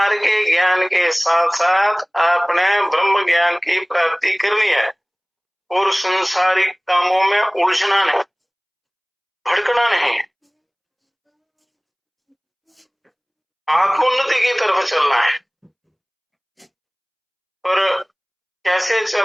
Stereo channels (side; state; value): both; identical; correlation 1.00